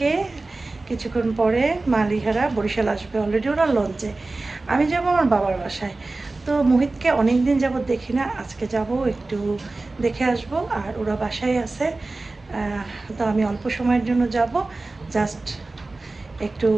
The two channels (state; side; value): quieter; left; 3.3 dB